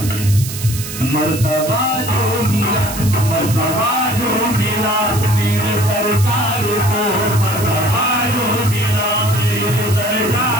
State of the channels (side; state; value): right; noise; hiss, 9 dB below the sound